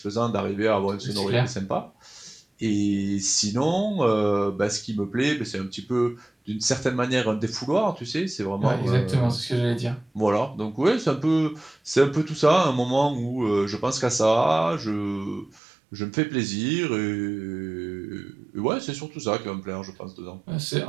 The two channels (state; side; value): drops out; left; at 15.6 s